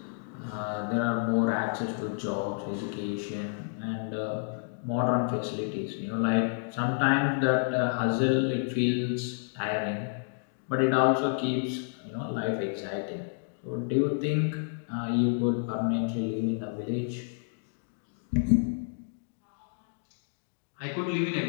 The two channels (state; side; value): silent; right; digital silence